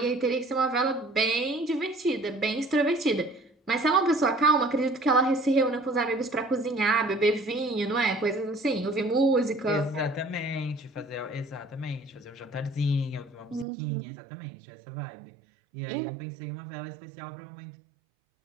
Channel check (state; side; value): drops out; left; at 13.7 s